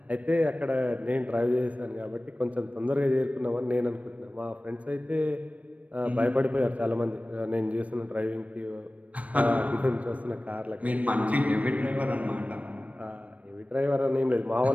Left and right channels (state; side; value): late; left; 0.067 ms